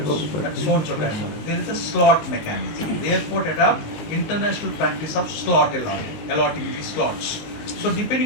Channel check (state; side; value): late; right; 19 ms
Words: booked at so and so time. There is a slot mechanism. The airport adopt international practice of slot allotting the slots. So